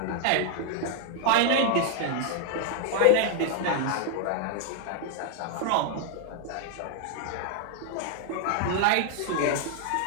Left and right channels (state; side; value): different; both; correlation 0.00